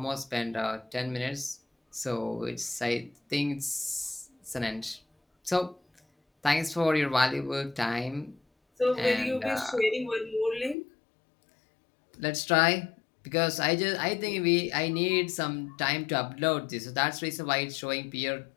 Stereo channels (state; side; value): drops out; right; at 10.8 s